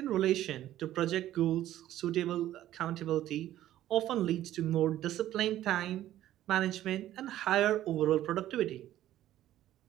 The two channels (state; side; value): quieter; left; 13.2 dB